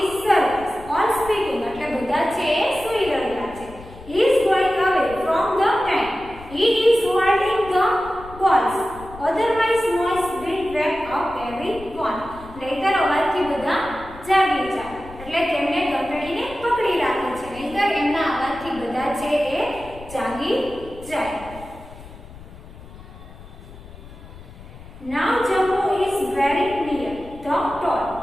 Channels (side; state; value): left; noise; rumble, 17 dB below the sound